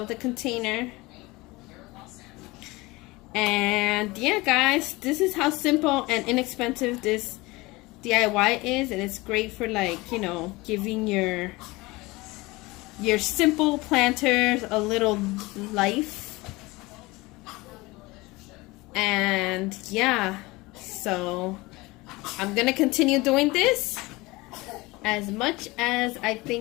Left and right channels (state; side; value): quieter; right; 22.2 dB